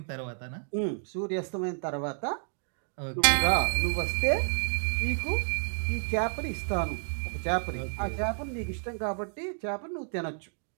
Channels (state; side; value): silent; left; 58 dB below the other